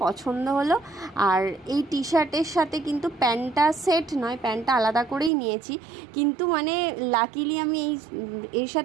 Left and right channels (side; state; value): left; drops out; at 5.3 s